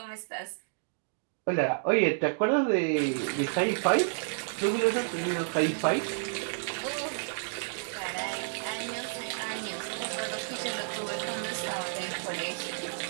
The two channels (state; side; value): silent; left; digital silence